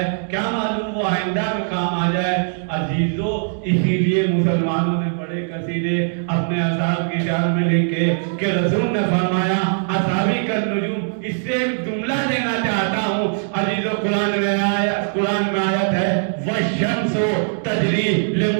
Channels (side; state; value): left; silent; digital silence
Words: کیا معلوم وہ آئندہ میں کام آ جائے. عزیزو, اسی لیے مسلمانوں نے بڑے قصیدے اپنے اصحاب کی شان میں لکھے کہ رسول نے فرمایا اصحابی کا نجوم. اس سے جملہ دینا چاہتا ہوں عزیزو, قرآن میں آیت ہے والشمس تجری